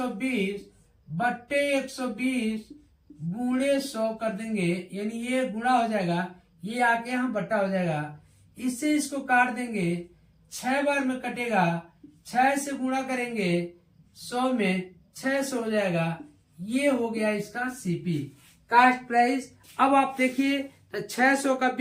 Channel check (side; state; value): both; identical; correlation 1.00